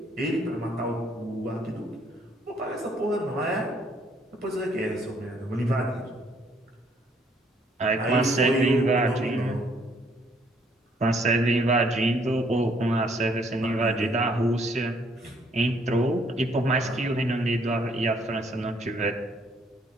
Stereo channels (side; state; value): both; normal; correlation 0.66